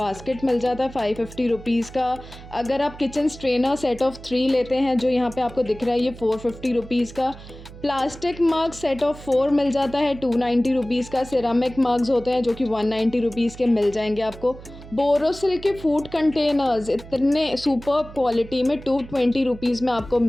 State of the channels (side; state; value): right; noise; hum, 16 dB below the sound